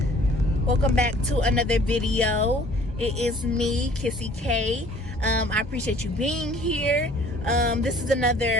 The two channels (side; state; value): both; normal; correlation 0.54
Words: welcome back to another video. It is me, Kissy K. I appreciate you being here. This is